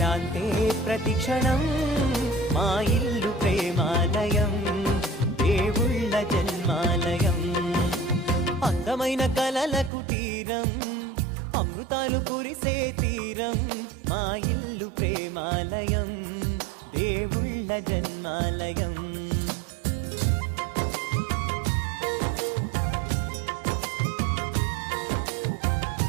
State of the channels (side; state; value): left; drops out; at 9.9 s